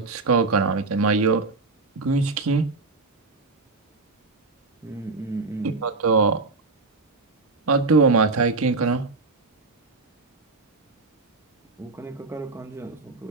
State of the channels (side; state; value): left; quieter; 3.8 dB